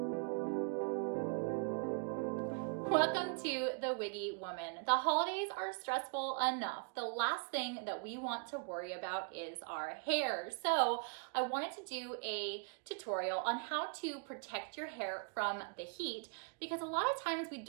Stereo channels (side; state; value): left; quieter; 39.4 dB